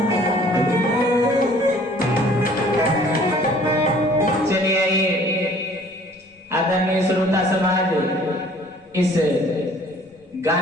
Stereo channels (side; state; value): both; normal; correlation 0.54